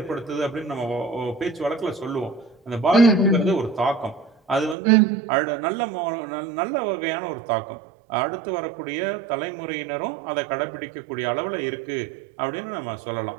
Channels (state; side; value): drops out; left; at 4.8 s